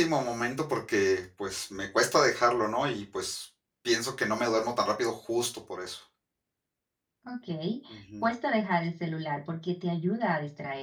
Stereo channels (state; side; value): identical; both; correlation 1.00